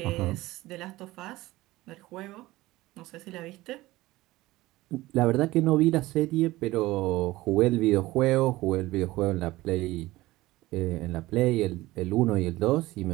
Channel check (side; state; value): left; quieter; 18.3 dB